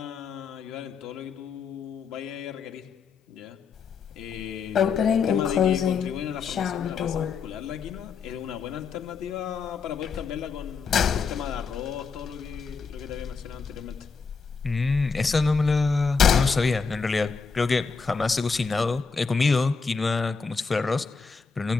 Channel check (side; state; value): right; quieter; 5.2 dB